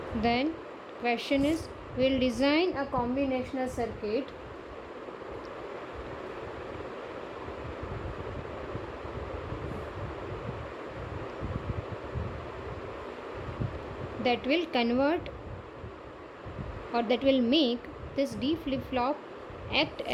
Then question is, we'll design a combinational circuit that will convert or that will make this D flip-flop act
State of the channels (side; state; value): both; identical; correlation 1.00